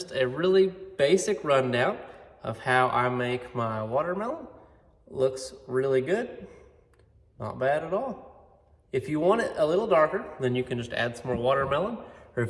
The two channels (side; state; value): both; identical; correlation 1.00